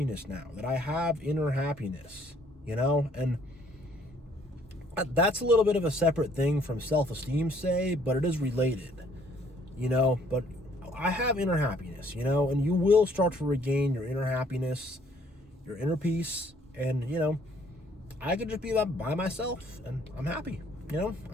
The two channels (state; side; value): normal; both; correlation 0.62